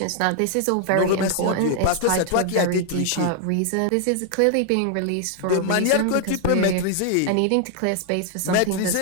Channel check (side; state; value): both; different; correlation 0.00